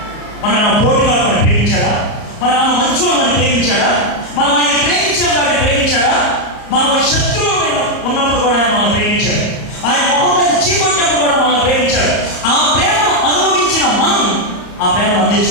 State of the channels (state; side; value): late; right; 34 ms